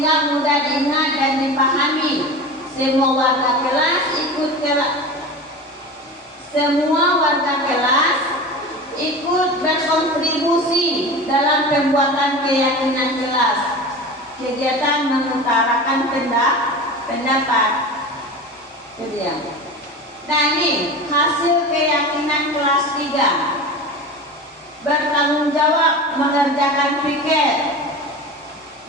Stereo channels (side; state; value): both; normal; correlation 0.31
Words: mudah diingat dan dipahami. Semua warga kelas ikut berkontribusi dalam pembuatan keyakinan kelas. Kegiatan mengutarakan pendapat. Nah, ini hasil keyakinan kelas 3. Bertanggung jawab mengerjakan piket,